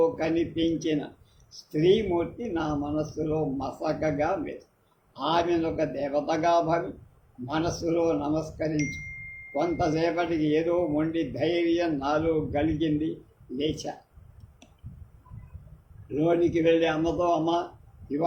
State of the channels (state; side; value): identical; both; correlation 1.00